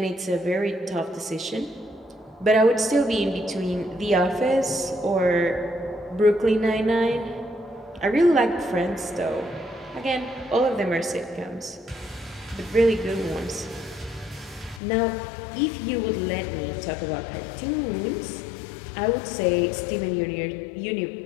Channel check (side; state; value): right; drops out; at 14.8 s